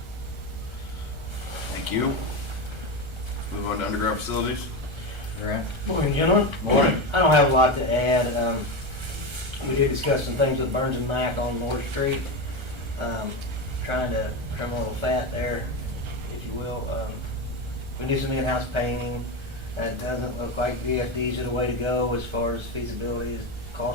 Thank you. Move on to underground facilities. Grant? Morning, gentlemen. Morning. I don't have a lot to add. We did discuss some things with Burns and Mac on North Street. Trying to trim a little fat there, if you will. We do some in-house painting. It doesn't look like VFDs are the way to go as far as feasibility,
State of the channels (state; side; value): late; left; 1.3 ms